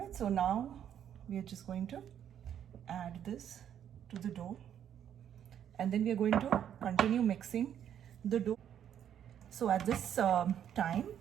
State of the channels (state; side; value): quieter; left; 9.6 dB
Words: so now we are just going to add this to the dough, and then we are going to continue mixing the dough. So at this time,